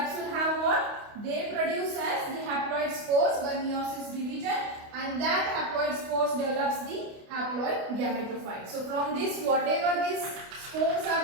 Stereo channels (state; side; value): late; left; 28 ms